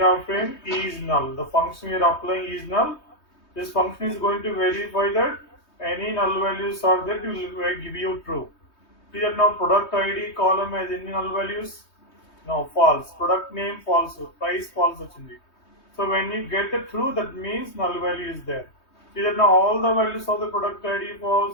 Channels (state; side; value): late; right; 3.2 ms